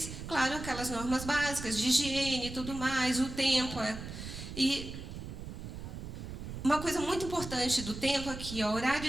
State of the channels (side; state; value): right; noise; rumble, 9 dB below the sound